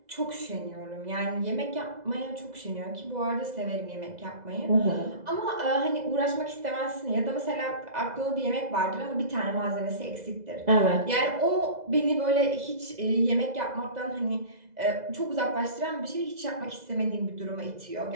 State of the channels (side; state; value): left; late; 2.0 ms